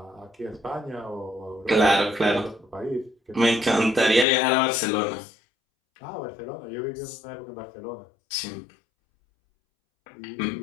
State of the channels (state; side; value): drops out; right; at 4.2 s